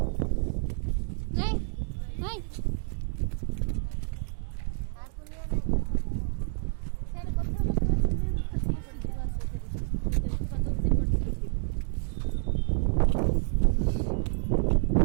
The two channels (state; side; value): silent; left; 59 dB below the other